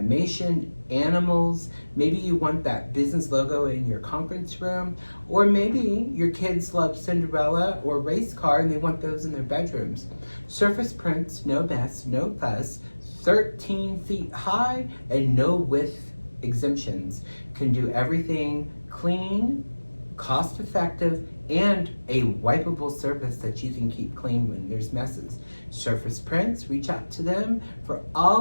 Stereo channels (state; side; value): inverted; both; correlation -1.00